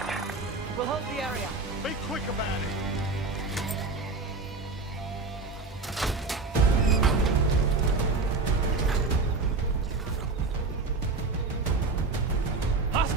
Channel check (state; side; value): quieter; left; 3.7 dB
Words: We'll hold the area. Be quick about it.